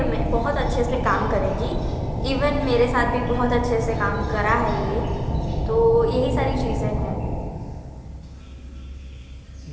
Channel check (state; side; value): identical; both; correlation 1.00